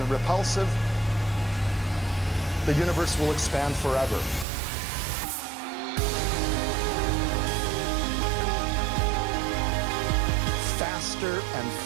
repulsive, the universe will expand forever. Faster and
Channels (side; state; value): left; drops out; at 4.5 s